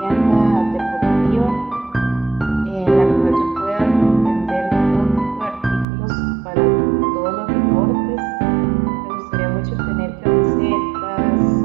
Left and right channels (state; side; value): drops out; left; at 5.9 s